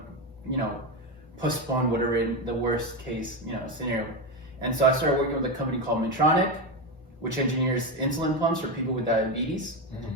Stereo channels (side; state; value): both; normal; correlation 0.14